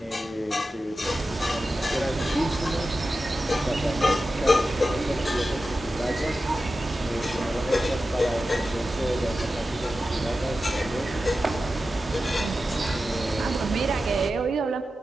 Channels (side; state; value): both; normal; correlation 0.92